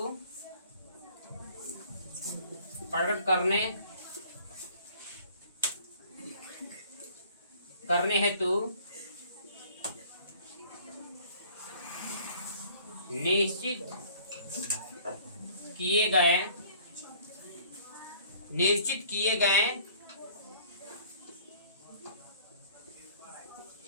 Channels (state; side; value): inverted; both; correlation -0.53